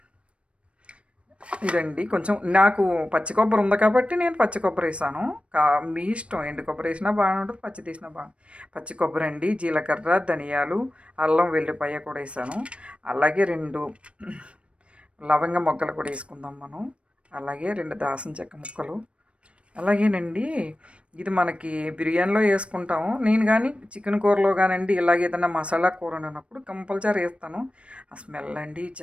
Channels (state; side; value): late; left; 0.060 ms